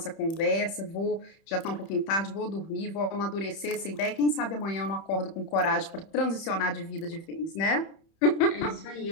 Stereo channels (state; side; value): late; right; 31 ms